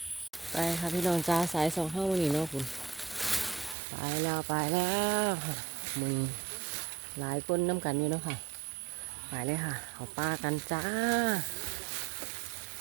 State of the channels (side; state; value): left; drops out; at 3.8 s